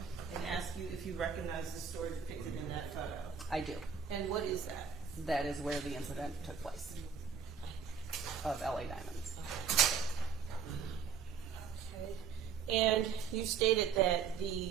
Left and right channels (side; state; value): left; quieter; 6.6 dB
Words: ask you if you recognize the story depicted in that photo. I do. And what is that? That is where the incident took place of LA Diamonds. Okay. And you stated that